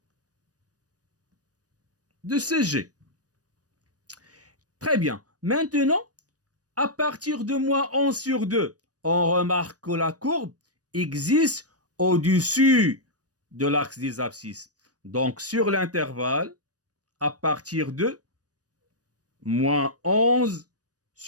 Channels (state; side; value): late; left; 0.68 ms